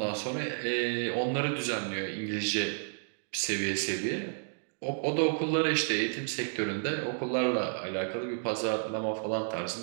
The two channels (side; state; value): left; silent; digital silence